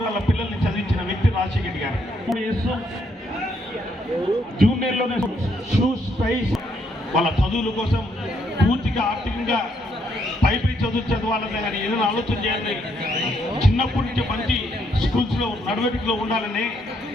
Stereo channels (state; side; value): normal; both; correlation 0.73